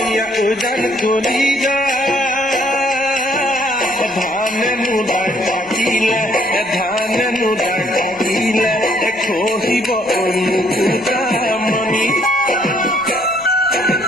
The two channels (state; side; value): noise; left; rumble, 27 dB below the sound